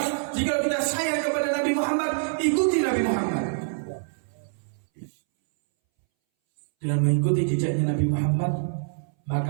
jika kita sayang kepada Nabi Muhammad, ikuti Nabi Muhammad. Dengan mengikuti jejaknya Nabi Muhammad,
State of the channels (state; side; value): silent; left; 61 dB below the other